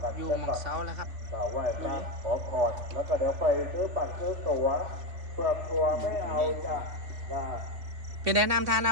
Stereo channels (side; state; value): left; late; 3.5 ms